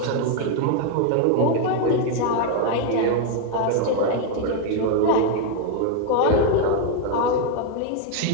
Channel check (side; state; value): both; different; correlation 0.01